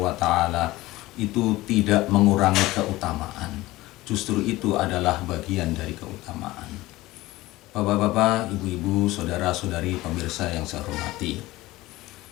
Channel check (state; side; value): quieter; right; 18.4 dB